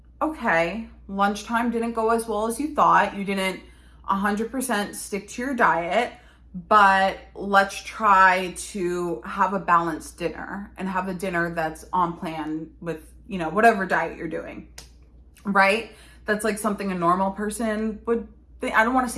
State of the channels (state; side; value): identical; both; correlation 1.00